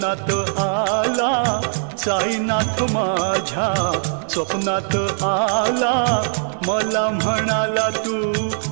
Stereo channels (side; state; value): left; silent; digital silence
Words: आला साईनाथ माझ्या स्वप्नात आला मला म्हणाला तू